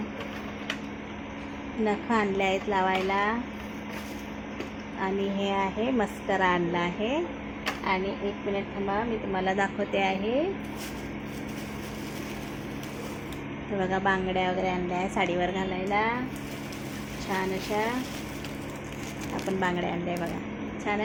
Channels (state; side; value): identical; both; correlation 1.00